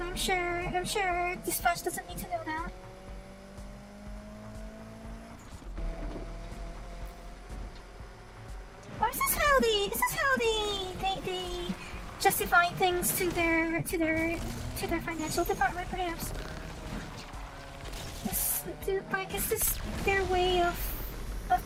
I'm sure dispatch doesn't need to know that. Or is this how they justify things to their financial department, perhaps? Is this their way of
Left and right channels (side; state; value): both; identical; correlation 1.00